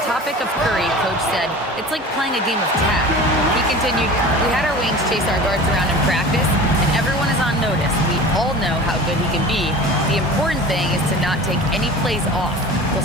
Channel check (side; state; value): both; normal; correlation 0.37